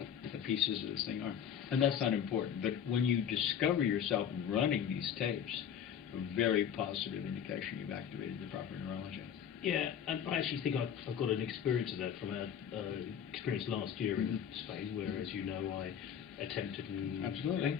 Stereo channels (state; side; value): quieter; right; 8.7 dB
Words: pieces of this thing are. And that's not important. But when you discover yourself running these tapes, a very positive indication you've activated the proper neurology. Yeah, and I actually think I've got an experience of that from our experience last year in Spain, where, as you know, I attempted and